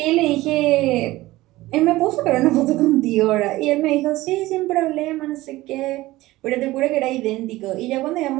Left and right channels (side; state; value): left; quieter; 18.1 dB